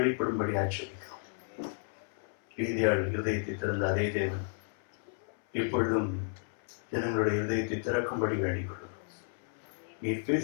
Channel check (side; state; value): right; silent; 56 dB below the other